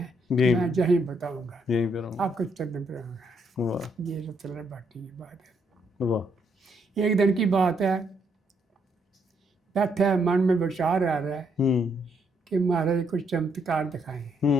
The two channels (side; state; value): both; normal; correlation 0.74